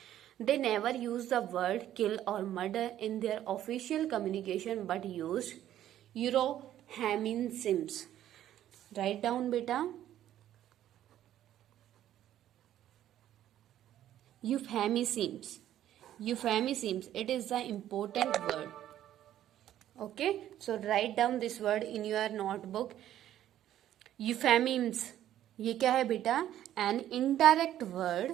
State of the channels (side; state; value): left; quieter; 12.0 dB